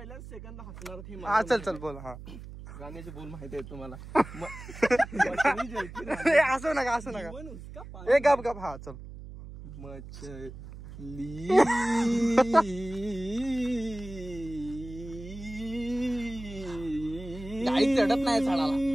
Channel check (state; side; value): noise; right; hum, 13 dB below the sound